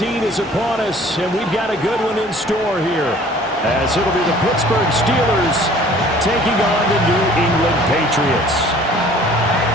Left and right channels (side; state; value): both; normal; correlation 0.52